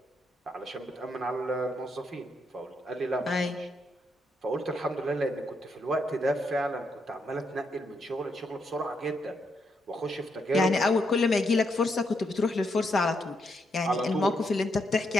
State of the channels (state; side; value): normal; both; correlation 0.79